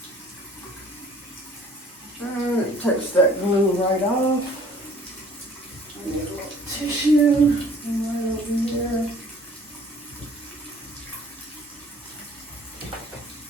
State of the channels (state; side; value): normal; both; correlation 0.54